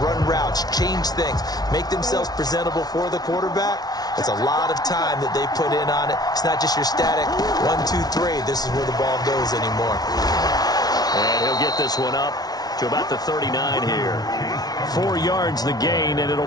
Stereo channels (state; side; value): late; right; 0.19 ms